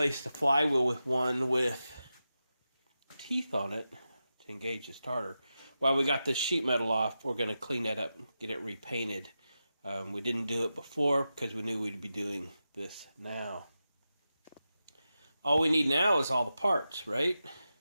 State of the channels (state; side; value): inverted; both; correlation -0.90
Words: the flywheel with one with teeth on it to engage the starter. While we got this sheet metal off, we're going to clean that up, get it repainted. We didn't do it before because we knew we'd be doing this now. All we need now is all the parts, right?